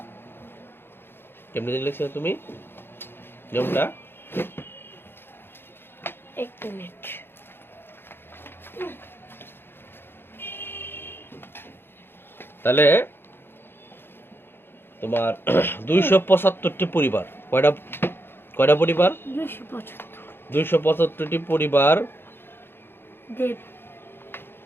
কেমনি লিখছো তুমি নিয়মটা? এক মিনিট। তাহলে তোমার 275টি পরিবার, কয়টা পরিবার? 275টি পরিবার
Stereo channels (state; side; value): late; right; 0.11 ms